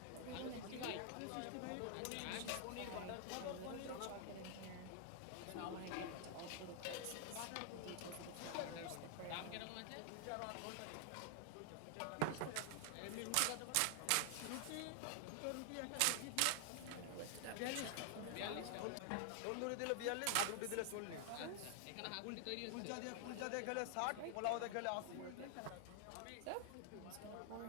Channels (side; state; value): both; different; correlation 0.00